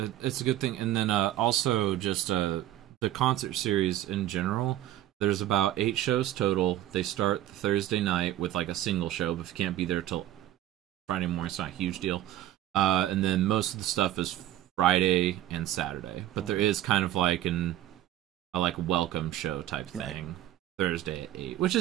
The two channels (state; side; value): quieter; left; 13.3 dB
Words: it's a good thing. And then also just the concert series in general. There's about 8 shows total. They start Thursday night with like a single show, but if you can't be there till Friday morning, it's not a huge deal. And then most of the stuff is Friday and Saturday, but there is kind of like a like welcome show type thing Thursday at 8, which